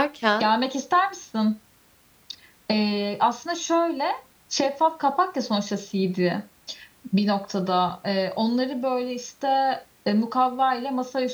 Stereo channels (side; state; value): both; identical; correlation 1.00